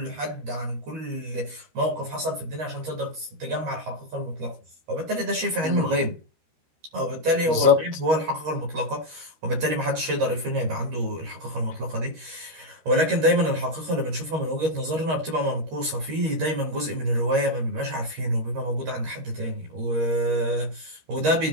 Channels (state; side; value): late; left; 13 ms